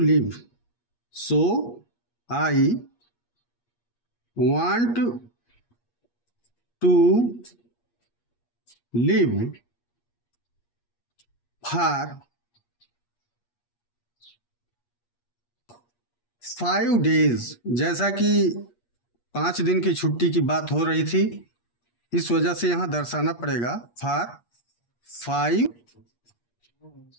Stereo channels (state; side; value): late; right; 8.4 ms